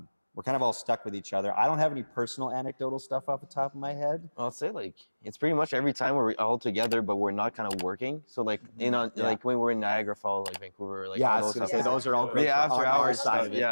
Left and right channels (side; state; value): both; inverted; correlation -1.00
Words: we're kind of all stuck with each other. I don't have any personal anecdotal stuff off the top of my head. I'll say like it's pretty much every time we're all together, but we're not kind of working. So like like when we're in Niagara Falls, like Vancouver, like Yeah, I all was those gonna stuff. say those are all great. The after on our hours side